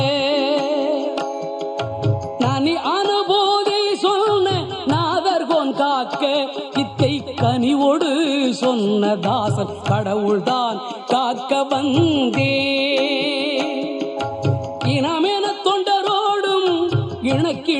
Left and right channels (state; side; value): identical; both; correlation 1.00